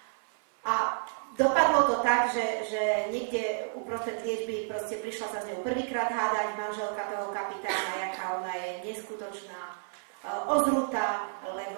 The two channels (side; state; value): left; silent; 57 dB below the other